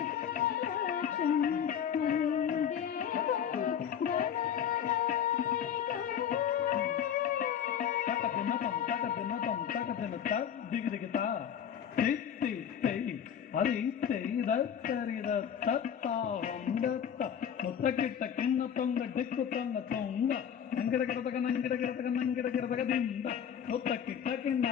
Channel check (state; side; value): quieter; right; 8.7 dB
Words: ದಿಗಿದಿಗಿತ ತಿತ್ತಿ ತೈ ಹರಿ ತೈದ ತರಿದ ತತ್ತ ಹೊಂದತ್ತ ಮುತ್ತಕಿಟ್ಟ ಕಿಣ್ಣ ತೊಂಗ ದಿಕ್ಕು ತೊಂಗ ತೊಂಗ ನಂಗಿಡ ಗಿಡದಗ ನಂಗಿಡ ಗಿಡದಗ ನಂಗಿಡ ಗಿಡದಗ ದಿಂದ ಮುತ್ತಕಿಟ್ಟ